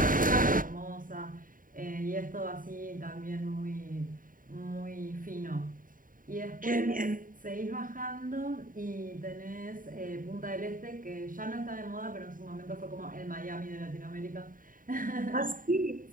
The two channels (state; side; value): late; left; 0.40 ms